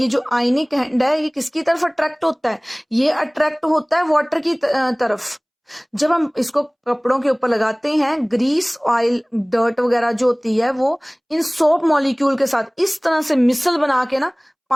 जो आयनिक एंड है ये किसकी तरफ अट्रैक्ट होता है, ये अट्रैक्ट होता है वाटर की तरफ। जब हम इसको कपड़ों के ऊपर लगाते हैं, ग्रीस ऑयल डर्ट वगैरह जो होती है वो इन सोप मॉलिक्यूल के साथ इस तरह से मिसल बना के ना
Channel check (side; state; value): both; identical; correlation 1.00